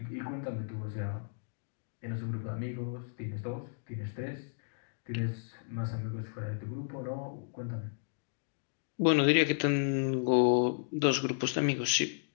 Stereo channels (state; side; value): silent; right; digital silence